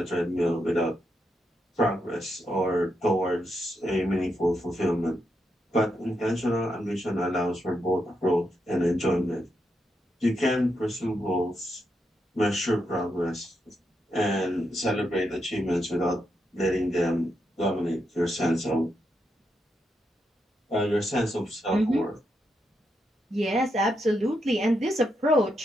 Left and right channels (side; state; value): both; normal; correlation 0.82